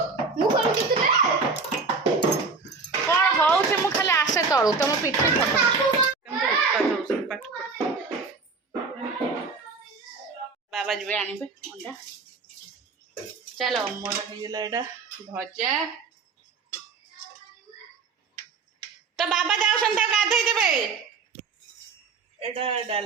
କ'ଣ ହଉଛି? ମୁଁ ଖାଲି ଆସେ ତଳୁ, ତମ ପିଠି ବାବା ଯିବେ ଆଣିବେ ଅଣ୍ଡା। ଚାଲ, ମୋର ହେଇଗଲା ଏଇଟା ଭଜା। ତ ବାବା ଯାଉଛନ୍ତି, ତାକୁ ଗାଧେଇ ଦେବେ। ଏଇଟା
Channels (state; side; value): quieter; left; 4.5 dB